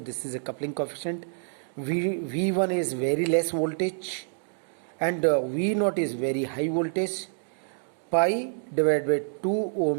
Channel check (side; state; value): left; silent; digital silence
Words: is a coupling coefficient. V1 is very less voltage and V naught is very high voltage. Pi divided by 2